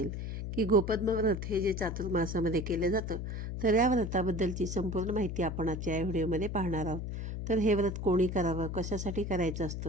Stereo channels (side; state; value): left; noise; hum, 5 dB below the sound